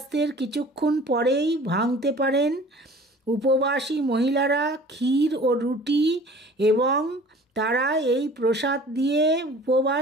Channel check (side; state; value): both; normal; correlation 0.46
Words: কিছুক্ষণ পরেই ভাঙতে পারেন। উপবাসী মহিলারা ক্ষীর ও রুটি এবং তারা এই প্রসাদ দিয়ে